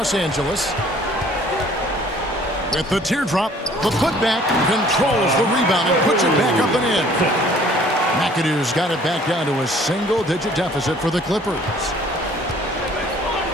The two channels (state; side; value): normal; both; correlation 0.55